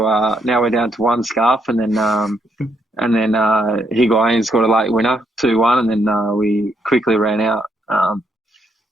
one scarf, and then Higuain scored a late winner, 2-1, and then we quickly ran out.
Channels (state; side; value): normal; both; correlation 0.75